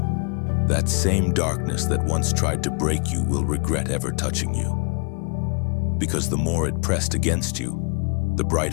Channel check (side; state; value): right; quieter; 34.2 dB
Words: that same darkness that once tried to break you will regret ever touching you. Because the more it pressed against you, the